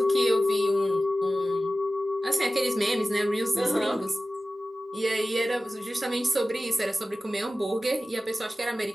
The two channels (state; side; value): normal; both; correlation 0.95